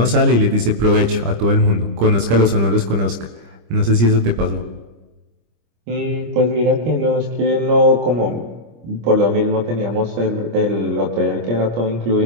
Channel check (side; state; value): left; late; 25 ms